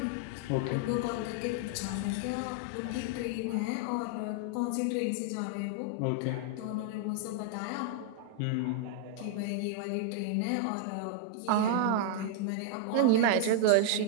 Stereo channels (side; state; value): both; different; correlation 0.00